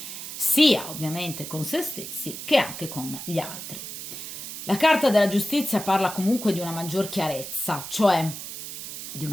sia ovviamente con se stessi che anche con gli altri. La carta della giustizia parla comunque di una maggior chiarezza, cioè di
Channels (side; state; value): right; noise; hiss, 9 dB below the sound